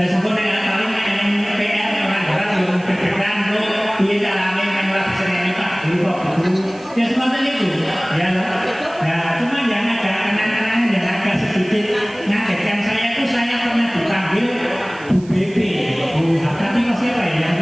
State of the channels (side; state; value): right; noise; hiss, 24 dB below the sound